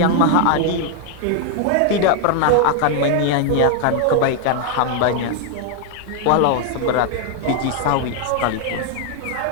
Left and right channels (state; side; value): different; both; correlation 0.00